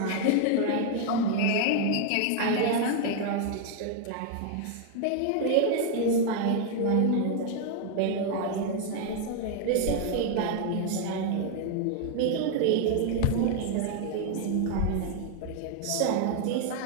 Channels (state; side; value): different; both; correlation 0.00